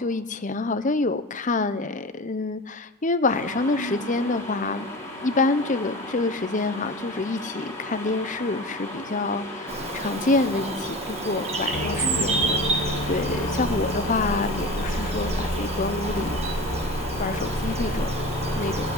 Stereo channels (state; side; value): normal; both; correlation 0.32